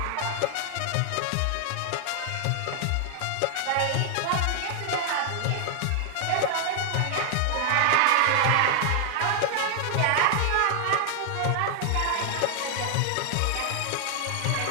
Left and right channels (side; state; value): both; different; correlation 0.00